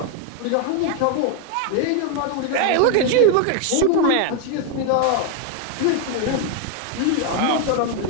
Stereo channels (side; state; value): both; different; correlation 0.01